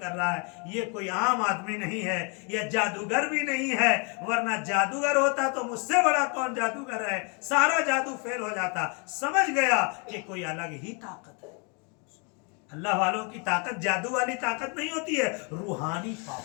رہا ہے، یہ کوئی عام آدمی نہیں ہے، یہ جادوگر بھی نہیں ہے. ورنہ جادوگر ہوتا تو مجھ سے بڑا کون جادوگر ہے، سارا جادو فیل ہو جاتا. سمجھ گیا کہ کوئی الگ ہی طاقت ہے. اللہ والوں کی طاقت جادو والی طاقت نہیں ہوتی ہے، روحانی پاور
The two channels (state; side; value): quieter; right; 35.0 dB